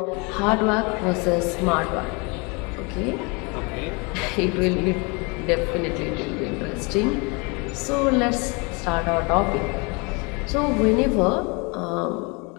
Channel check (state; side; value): quieter; right; 30.3 dB